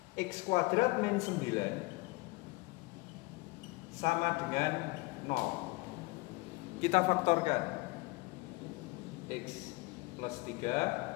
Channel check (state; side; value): quieter; right; 23.9 dB